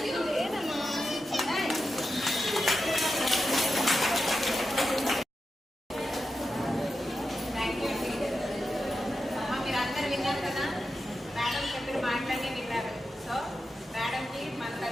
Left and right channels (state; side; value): normal; both; correlation 0.90